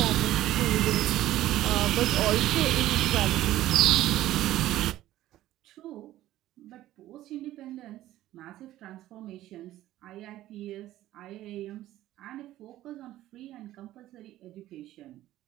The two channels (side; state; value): left; quieter; 14.5 dB